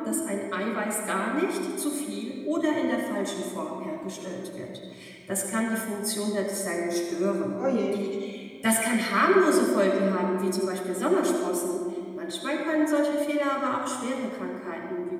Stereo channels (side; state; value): both; identical; correlation 1.00